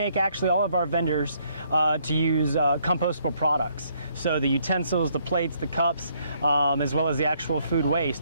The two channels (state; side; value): inverted; both; correlation -0.69